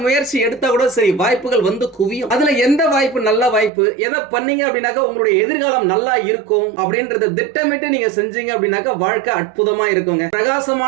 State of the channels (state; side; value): drops out; left; at 3.7 s